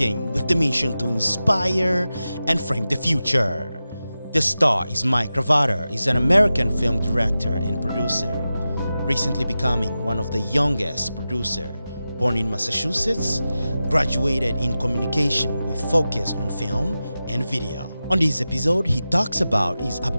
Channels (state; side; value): inverted; both; correlation -0.93